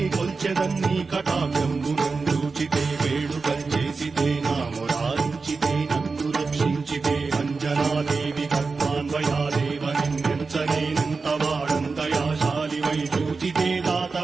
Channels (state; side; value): quieter; left; 4.4 dB